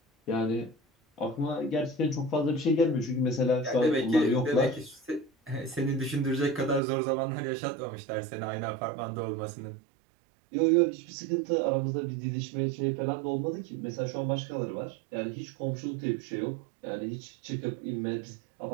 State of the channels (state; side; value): drops out; left; at 6.8 s